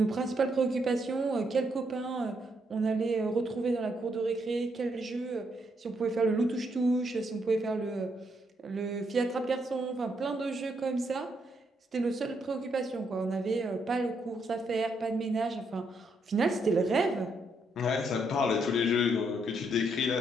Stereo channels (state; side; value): normal; both; correlation 0.76